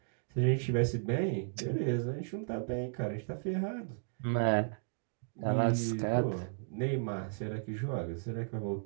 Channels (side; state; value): left; silent; digital silence